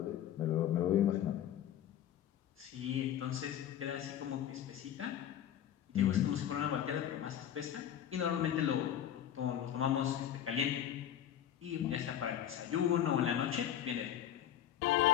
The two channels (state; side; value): quieter; right; 10.6 dB